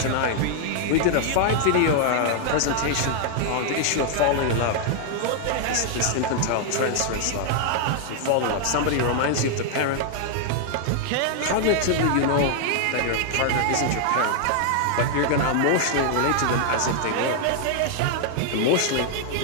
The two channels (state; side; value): different; both; correlation 0.00